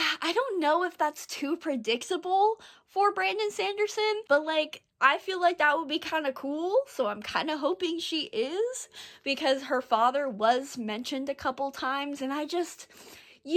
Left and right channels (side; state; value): both; identical; correlation 1.00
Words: don't know if that's too predictable for Brandon Sanderson, but like, I feel like that would be kind of cool, so I'm kind of hoping she is, because her father was mentioned a couple times, and